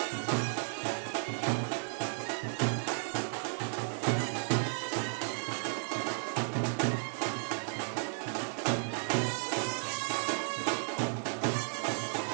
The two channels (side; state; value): left; silent; 55 dB below the other